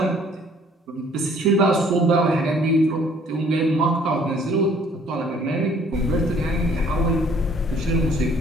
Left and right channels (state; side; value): normal; both; correlation 0.58